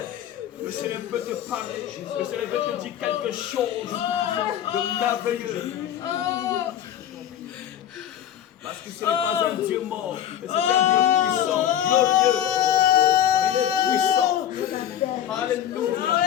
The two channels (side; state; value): right; quieter; 10.6 dB